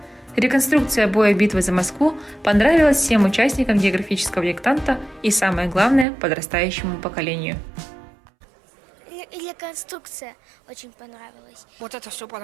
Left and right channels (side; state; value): left; drops out; at 6.1 s